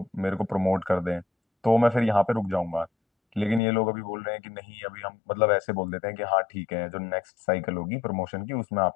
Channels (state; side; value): drops out; right; at 3.6 s